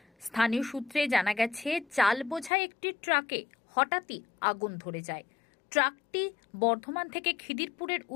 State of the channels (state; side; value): drops out; right; at 2.5 s